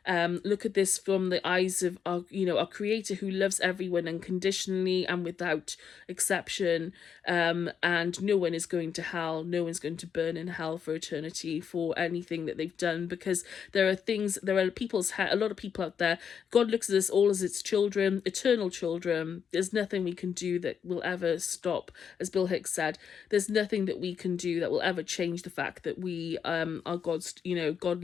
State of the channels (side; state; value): right; quieter; 7.4 dB